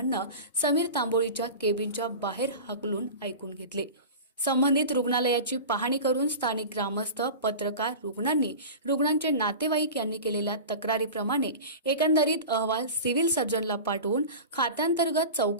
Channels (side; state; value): both; inverted; correlation -0.32